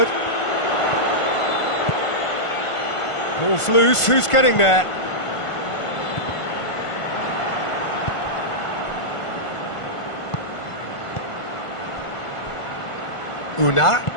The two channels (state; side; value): late; right; 1.5 ms